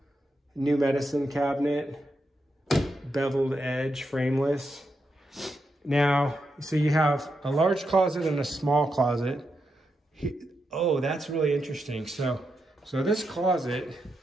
medicine cabinet, beveled edge, frameless. Now, so you have a large closet and a small closet. Oh, that's really interesting. So this closet,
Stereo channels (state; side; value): normal; both; correlation 0.85